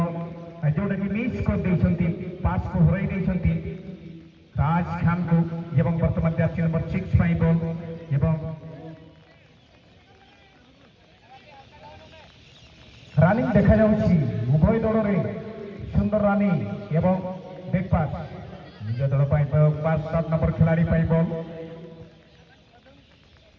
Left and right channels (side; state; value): both; identical; correlation 1.00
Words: जोटाकि मिस कर देइछन्ति पास को हराई देइछन्ति राज खान को एवं वर्तमान जर्सी नंबर 6 पाई बल एवं रानिंग देखा जाउछि उभय दलरे सुंदर रानिंग एवं बैक पास निज दल पाई पास 7 नंबर खिलाड़ी पाई बल